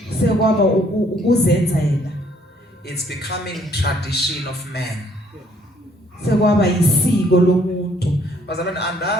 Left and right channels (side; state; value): both; normal; correlation 0.64